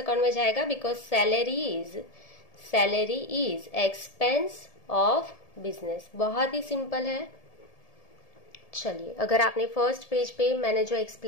में जाएगा, because salary is expense of business. बहुत ही सिंपल है। चलिए, अगर आपने फर्स्ट पेज पे मैंने जो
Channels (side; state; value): right; late; 1.7 ms